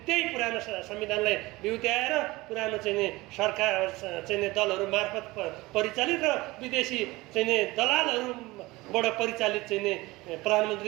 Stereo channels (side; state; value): left; quieter; 20.9 dB